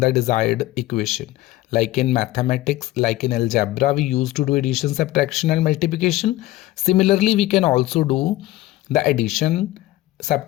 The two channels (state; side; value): quieter; right; 16.6 dB